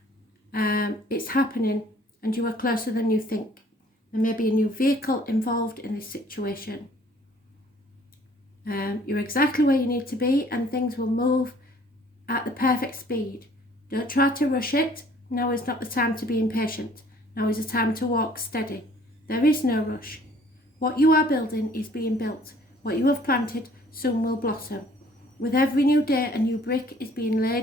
It's happening and you are closer than you think. There may be a new vehicle involved in this situation. You're exactly where you need to be and things will move at the perfect speed. Don't try to rush it. Now is not the time to be impatient. Now is the time to walk steady. There is no rush. What you are building is being built. What you have planted soon will blossom. With every new day, a new brick is being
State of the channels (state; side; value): normal; both; correlation 0.57